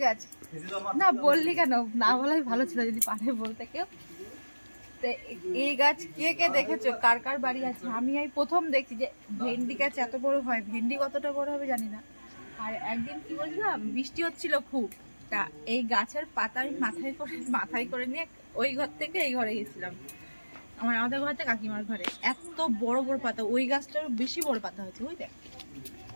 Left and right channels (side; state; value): both; inverted; correlation -1.00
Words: গাছ না বললি কেন? না বলাই ভালো ছিল যদি পারে বলতে কেউ। এই গাছ কে কে দেখেছো, কার কার বাড়ি আছে? আমি এই প্রথম দেখছি যে ভেন্ডি গাছ এত বড় হয়। ভেন্ডি কতটা বড় হবে জানি না। আর একদিন কি বলছিলাম, বৃষ্টি হচ্ছিল খুব, তা এই গাছের পাতা আমি মাথায় করে নিয়ে ওই ঘর থেকে এই ঘরে গেছিলাম, আমাদের ঘর থেকে কাকিমার ঘরে। এত বড় বড় পাতা, ওই গাছটার বেশি বড় পাতা হয়েছে। ওই দেখ